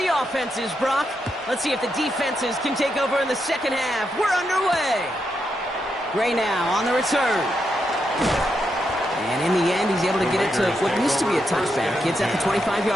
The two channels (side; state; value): both; normal; correlation 0.83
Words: offenses, Brock. Let's see if the defenses can take over in the second half. We're underway. Gray now on the return. And in the end, he's able to get it to what used to be a touchback. It's at the